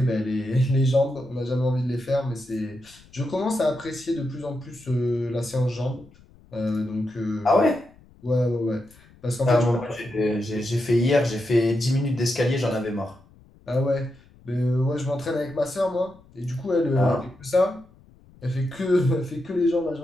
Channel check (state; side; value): noise; left; rumble, 27 dB below the sound